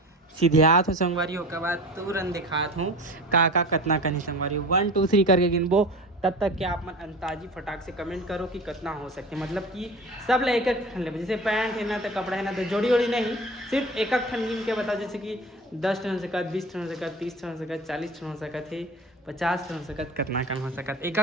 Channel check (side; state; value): both; normal; correlation 0.35